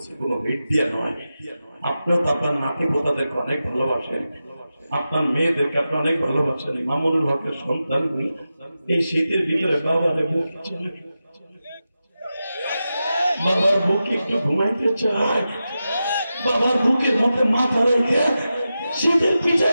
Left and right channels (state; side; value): inverted; both; correlation -0.92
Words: কোনো হিট দিয়ে নয়। আপনিও তো আপনার নাতি পোতাদেরকে অনেক ভালোবাসেন, আপনার মেয়েদেরকে আপনি অনেক ভালোবাসেন। মামুনুল হকের সন্তান এই শীতের ভিতরে বাবারে বুক চলে, বাবার বুকে একটু ঘুমাইতে চায়, বাবার বুকের মধ্যে মাথা রেখে শীতের পিঠা